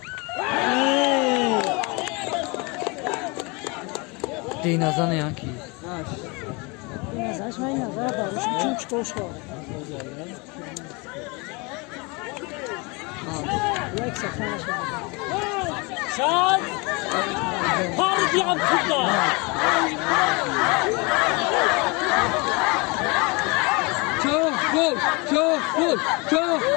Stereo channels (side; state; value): right; quieter; 28.4 dB